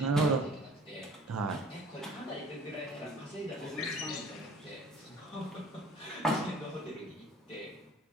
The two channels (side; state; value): both; normal; correlation 0.49